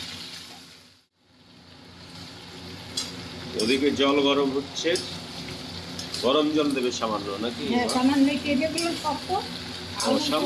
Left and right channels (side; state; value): both; identical; correlation 1.00